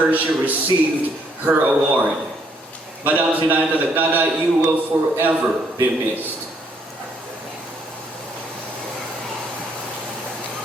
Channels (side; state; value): both; normal; correlation 0.69